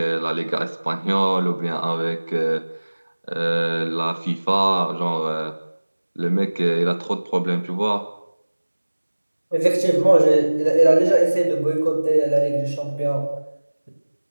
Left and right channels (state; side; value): inverted; both; correlation -1.00